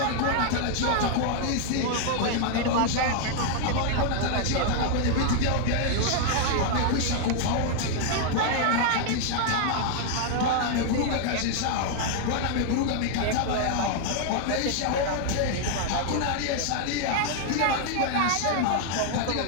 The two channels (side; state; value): both; different; correlation 0.00